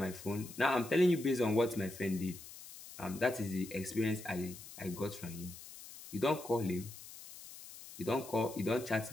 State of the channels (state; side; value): noise; left; hiss, 15 dB below the sound